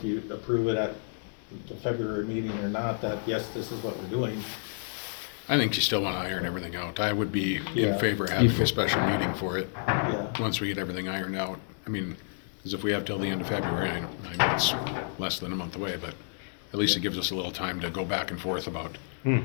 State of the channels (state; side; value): silent; right; digital silence